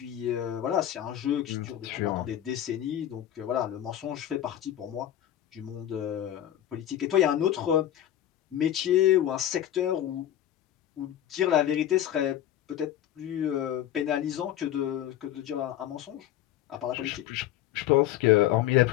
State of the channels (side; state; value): right; quieter; 11.7 dB